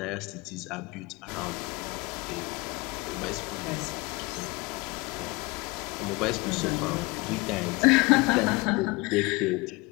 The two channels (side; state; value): right; quieter; 25.2 dB